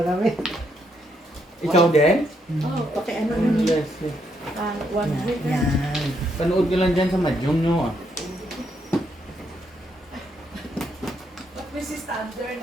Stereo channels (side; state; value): both; normal; correlation 0.75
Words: kami. Ikaw din? Oh, pakiano nun. Yes. yes. 100 na. Yan. Panood ka lang dyan sa Madyong nyo. But this is standard